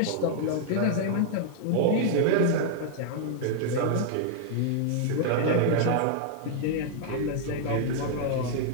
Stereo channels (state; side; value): different; both; correlation -0.01